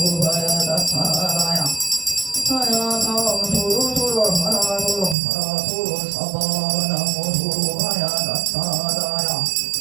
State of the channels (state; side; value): drops out; left; at 5.2 s